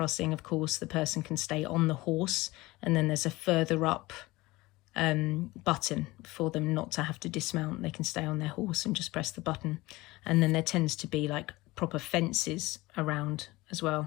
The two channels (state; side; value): quieter; right; 20.4 dB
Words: of course, the person can stay on the horse, and then there's a further up button for them not to have to dismount. They can stay on their horse and just press the button. And then there tends to be like proper fences around as